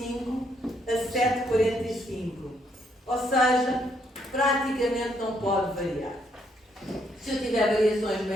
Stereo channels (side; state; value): both; normal; correlation 0.73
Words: a 7,45. Ou seja, praticamente não pode variar. Se eu tiver variações